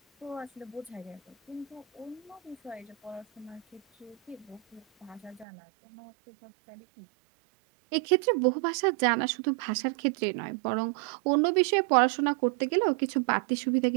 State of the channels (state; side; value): drops out; left; at 5.5 s